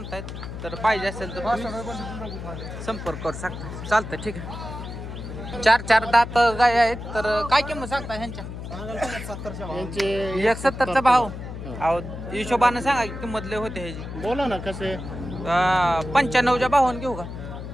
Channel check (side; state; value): left; noise; hum, 9 dB below the sound